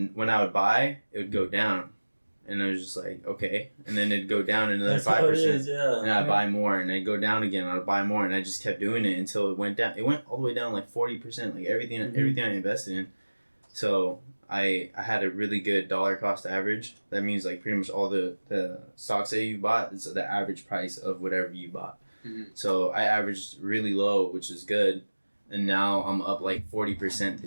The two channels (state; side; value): inverted; both; correlation -1.00